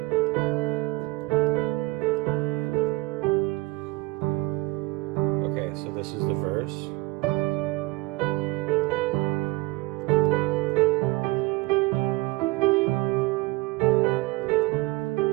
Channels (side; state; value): left; quieter; 21.9 dB